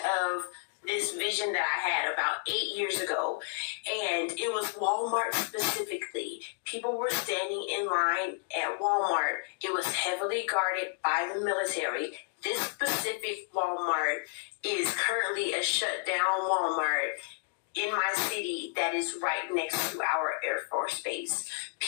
of this vision that I had about 8 years ago. And it was Walmart specifically. People were standing in line at Walmart. It was heavily guarded by the military. This specific Walmart is currently a shut down Walmart in my city that is right next to our Air Force Base.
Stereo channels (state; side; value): silent; right; 57 dB below the other